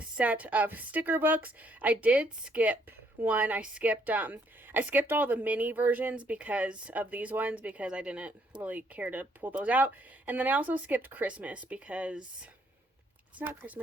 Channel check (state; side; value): normal; both; correlation 0.69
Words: set of sticker books. I did skip one. I skipped all the mini versions because of these ones because I didn't really care to pull those out. And then I also skipped Christmas because it's not